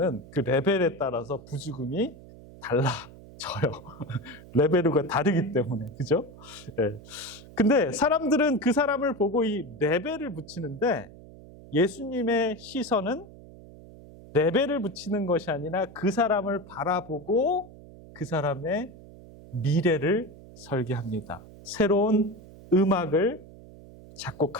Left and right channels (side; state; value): right; noise; hum, 19 dB below the sound